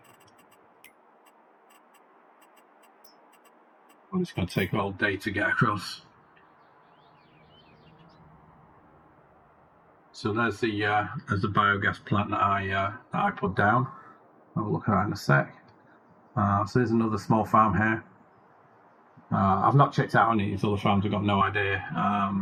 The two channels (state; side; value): identical; both; correlation 1.00